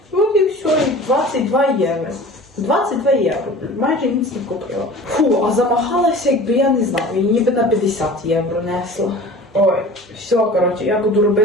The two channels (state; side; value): normal; both; correlation 0.41